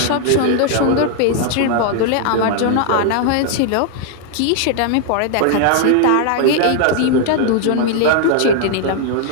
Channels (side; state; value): both; different; correlation 0.00